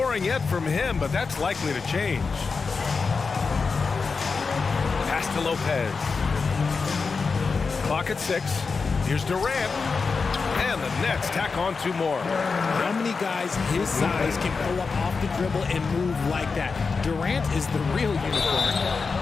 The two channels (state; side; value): quieter; right; 4.7 dB